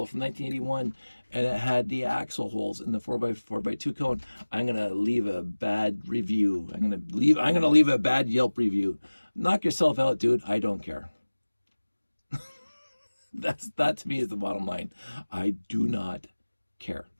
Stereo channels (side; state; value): both; inverted; correlation -1.00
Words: from 1981, and it had the axle holes in the 4x4x2 cone. I'm gonna leave a bad review. I'm gonna leave a bad Yelp review. Knock yourself out, dude. I don't care. That to me is the bottom line. I do not care.